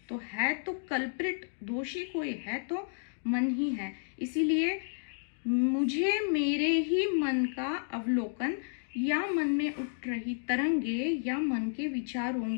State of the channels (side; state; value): right; silent; digital silence